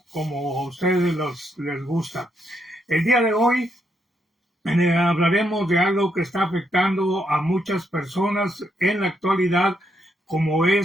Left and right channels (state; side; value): normal; both; correlation 0.78